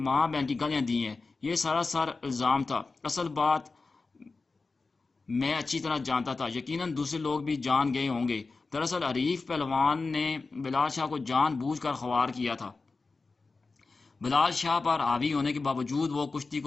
بہن کی گالیاں دی ہیں، یہ سراسر الزام تھا، اصل بات میں اچھی طرح جانتا تھا، یقیناً دوسرے لوگ بھی جان گئے ہوں گے، دراصل حریف پہلوان نے بلال شاہ کو جان بوجھ کر خوار کیا تھا۔ بلال شاہ پر حاوی ہونے کے باوجود وہ کشتی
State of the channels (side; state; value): right; quieter; 3.9 dB